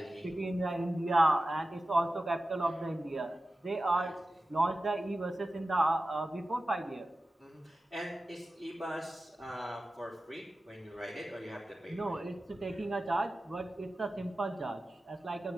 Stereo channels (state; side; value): normal; both; correlation 0.95